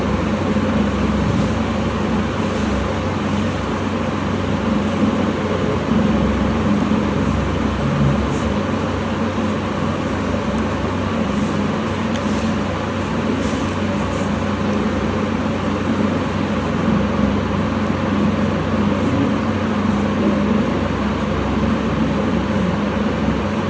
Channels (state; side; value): identical; both; correlation 1.00